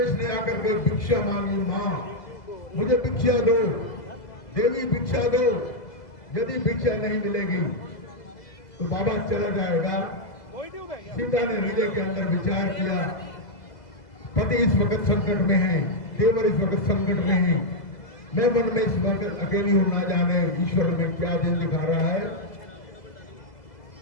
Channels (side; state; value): right; late; 2.0 ms